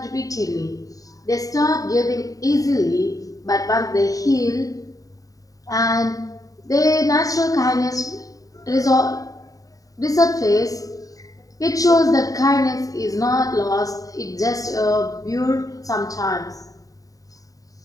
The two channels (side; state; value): right; late; 0.17 ms